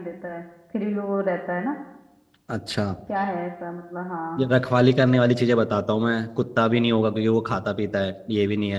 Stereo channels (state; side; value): identical; both; correlation 1.00